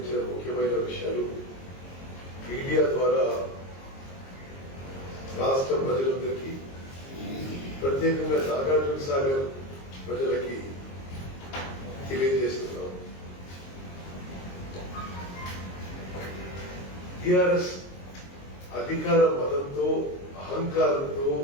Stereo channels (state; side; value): late; right; 22 ms